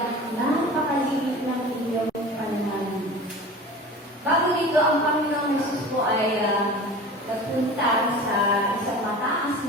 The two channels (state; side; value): normal; both; correlation 0.37